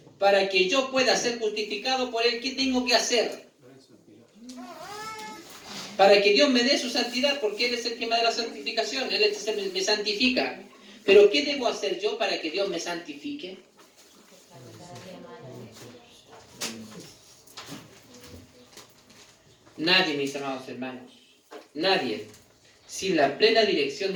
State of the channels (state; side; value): identical; both; correlation 1.00